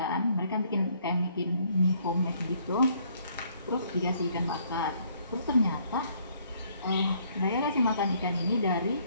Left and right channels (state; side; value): inverted; both; correlation -0.65